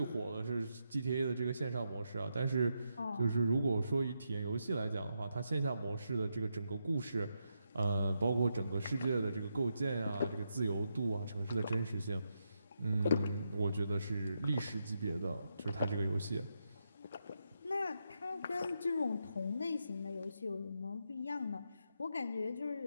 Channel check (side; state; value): both; inverted; correlation -0.83